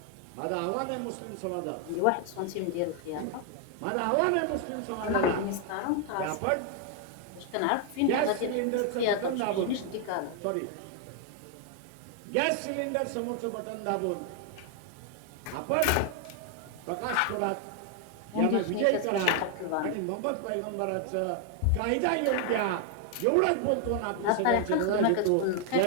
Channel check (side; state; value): both; different; correlation 0.00